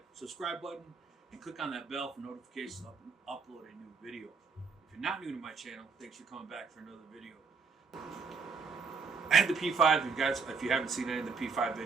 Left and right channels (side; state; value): left; quieter; 5.1 dB